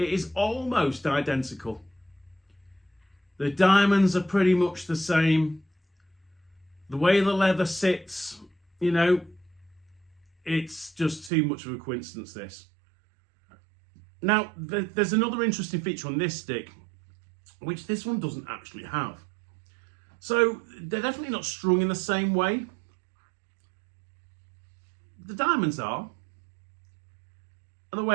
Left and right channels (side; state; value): left; drops out; at 11.3 s